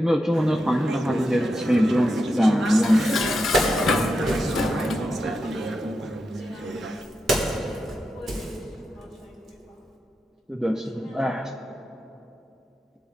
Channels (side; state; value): both; normal; correlation 0.87